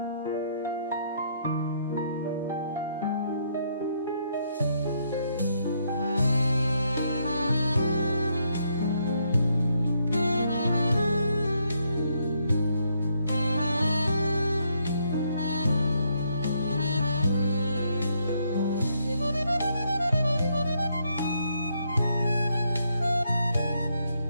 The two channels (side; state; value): both; inverted; correlation -0.74